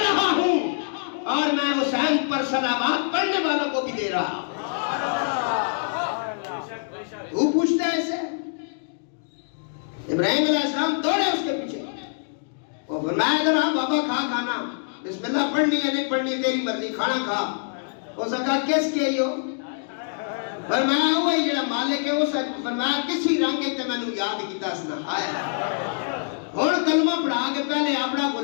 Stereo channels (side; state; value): right; silent; digital silence